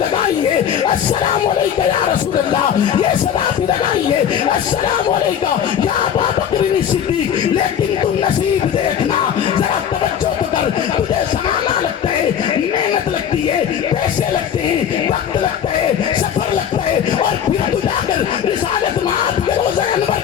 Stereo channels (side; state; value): right; quieter; 8.9 dB